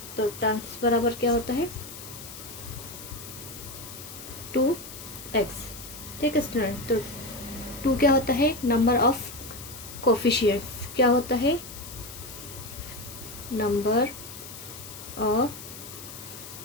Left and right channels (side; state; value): left; noise; hiss, 13 dB below the sound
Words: तो टर्म्स बराबर क्या होता है 2x। ठीक है स्टूडेंट, तो 2 क्या होता है नंबर ऑफ कोफिशिएंट्स, क्या होता है नंबर ऑफ